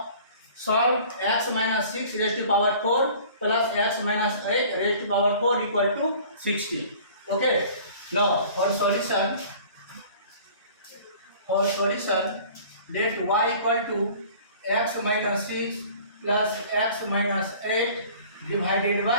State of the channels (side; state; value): both; inverted; correlation -0.48